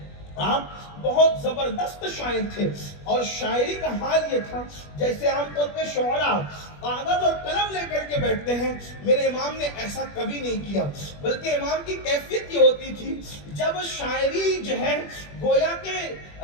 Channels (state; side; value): late; right; 21 ms